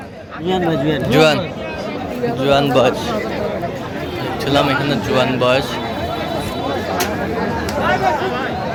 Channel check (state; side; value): identical; both; correlation 1.00